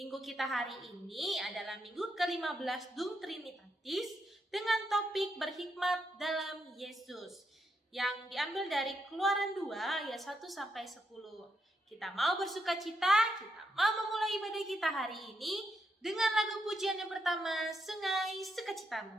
kita hari ini adalah minggu ke-15 Dum Trinitatis dengan topik berhikmat dalam Yesus yang diambil dari Keluaran 2 ayat 1-10. Kita mau bersukacita, kita mau memulai ibadah kita hari ini dengan lagu pujian yang pertama, Sungai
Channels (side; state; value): both; normal; correlation 0.80